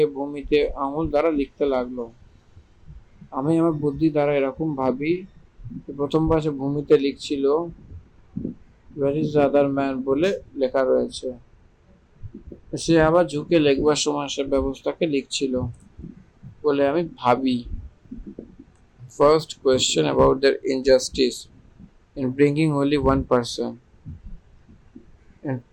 ভূমিতে আঙুল দ্বারা লিখতে লাগলো। আমি আমার বুদ্ধি দ্বারা এরকম ভাবি, প্রথমবার সে ভূমিতে লিখছিল where is the other man বলে লেখা রয়েছে। সে আবার ঝুঁকে লিখবার সময় সে ব্যবস্থাকে লিখছিল বলে আমি ভাবি। First question about their injustice in bringing only one person and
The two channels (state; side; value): identical; both; correlation 1.00